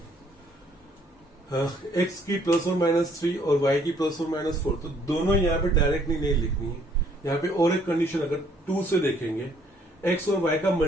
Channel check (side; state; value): both; normal; correlation 0.64